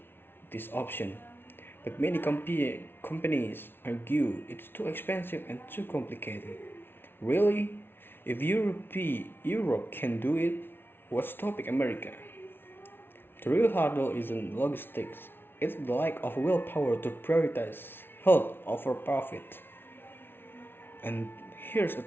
this option, but many companies argue it's too expensive and too complicated. Really? If Europe can do it, what's stopping America? The real hurdle isn't logistics, it's the lack of willpower to prioritize health over profit. And here's a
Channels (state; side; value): late; right; 0.11 ms